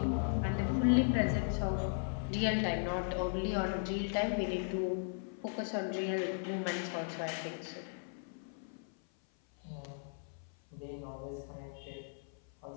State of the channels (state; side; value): silent; right; 53 dB below the other